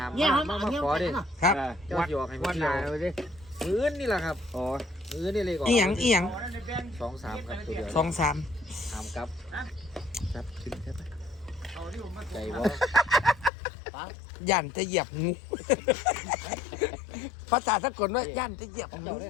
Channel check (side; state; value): right; drops out; at 13.5 s